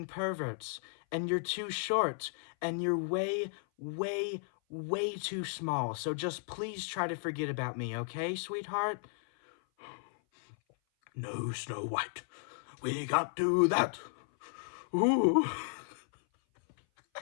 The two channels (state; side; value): silent; right; 55 dB below the other